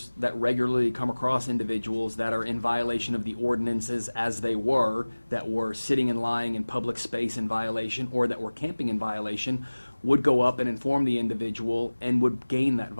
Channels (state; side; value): inverted; both; correlation -1.00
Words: that regularly come across individuals that are in violation of the ordinances as they were, that were sitting and lying in public space in violation, or that were camping in violation, would go up and inform the individual and would gain that